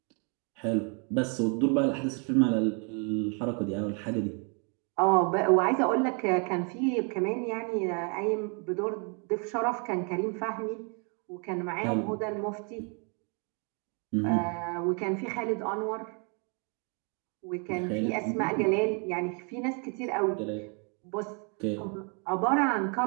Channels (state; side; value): quieter; left; 37.1 dB